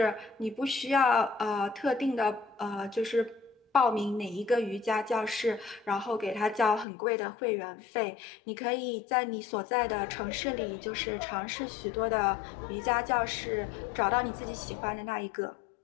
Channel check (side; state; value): right; drops out; at 6.9 s